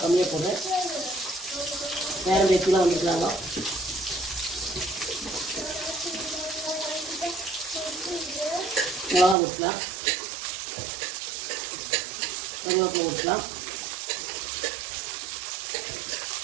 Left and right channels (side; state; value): left; drops out; at 9.3 s